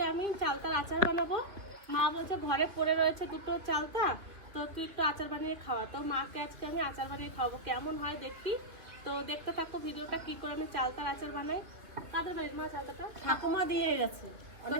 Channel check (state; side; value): late; left; 2.7 ms